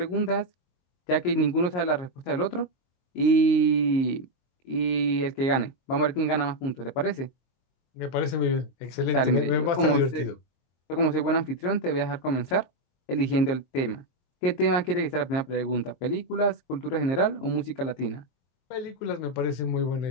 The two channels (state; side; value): late; right; 22 ms